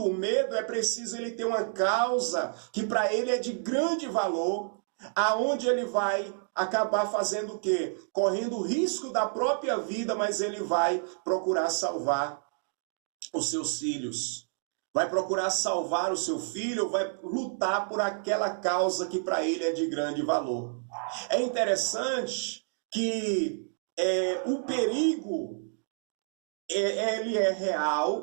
o medo, é preciso ele ter uma causa que para ele é de grande valor, aonde ele vai acabar fazendo o quê? Correndo o risco da própria vida, mas ele vai procurar salvar os seus filhos. Vai procurar salvar o seu filho, vai lutar por aquela causa que para ele é de grande valor. É interessante que o perigo, ele é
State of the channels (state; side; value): silent; left; digital silence